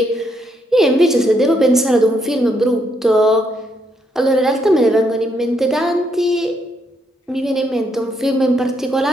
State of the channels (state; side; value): normal; both; correlation 0.75